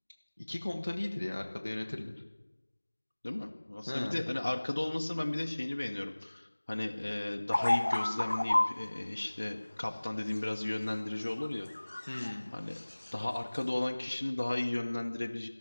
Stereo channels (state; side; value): inverted; both; correlation -1.00